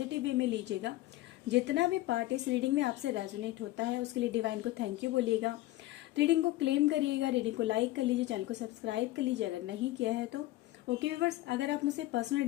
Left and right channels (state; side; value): quieter; right; 16.8 dB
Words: वे में लीजिएगा। जितना भी पार्ट इस रीडिंग में आपसे रेजोनेट होता है उसके लिए डिवाइन को थैंक यू बोलिएगा। रीडिंग को क्लेम करिएगा, रीडिंग को लाइक कर लीजिए, चैनल को सब्सक्राइब कर लीजिए अगर नहीं किया है तो। ओके व्यूअर्स, अगर आप मुझसे पर्सनल